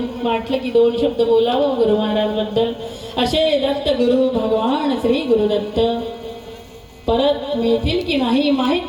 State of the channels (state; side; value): identical; both; correlation 1.00